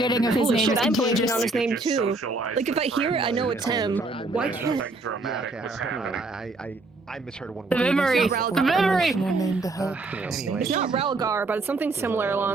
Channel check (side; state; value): left; quieter; 3.3 dB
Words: of his Holy name shit, is I'm blanking contagious. on his name too. Like if I hear it, I know it's him. Why can't Nothing dramatic was happening. I misheard one The word. memory. The memory. Name to help. Anyway. It's not Ralgar, but it's something similar